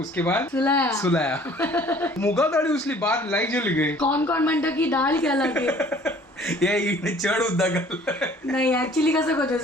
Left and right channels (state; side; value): normal; both; correlation 0.53